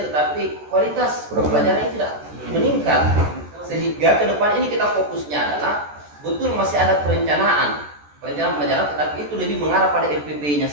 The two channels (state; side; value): late; left; 14 ms